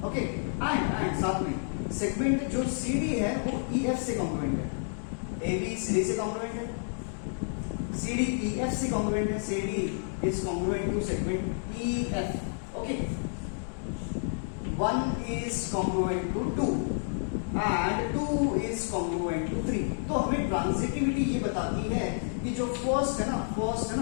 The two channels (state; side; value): silent; right; digital silence